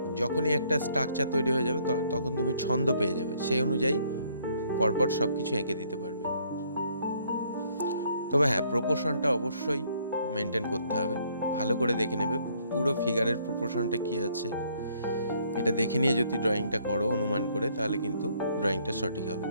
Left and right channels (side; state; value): both; inverted; correlation -0.65